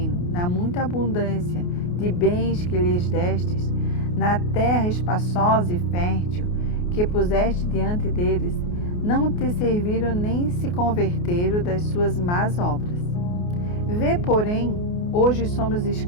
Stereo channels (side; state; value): right; late; 28 ms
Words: na muita abundância de bens que lhes destes, na terra espaçosa e fértil, que puseste diante deles, não te serviram nem se converteram das suas más obras. Vê, porém, hoje somos